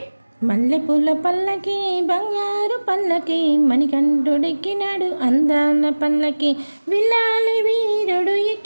మల్లెపూల పల్లకి బంగారు పల్లకి మణికంఠుడెక్కినాడు అందాల పల్లకి విల్లాలి వీరుడు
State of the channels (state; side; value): inverted; both; correlation -1.00